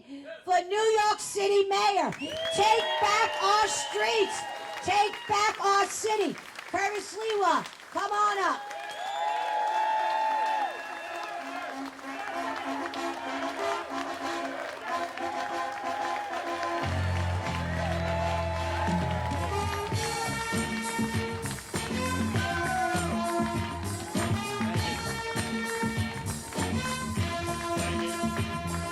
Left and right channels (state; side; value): identical; both; correlation 1.00